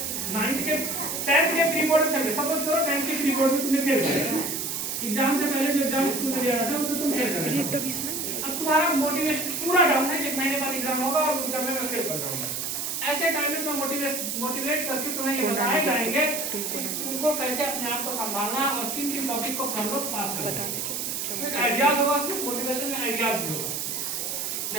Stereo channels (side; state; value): right; noise; hiss, 2 dB below the sound